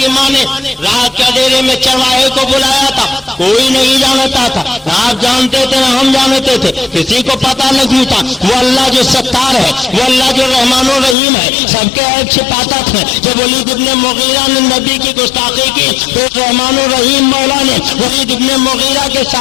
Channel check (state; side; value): drops out; right; at 11.2 s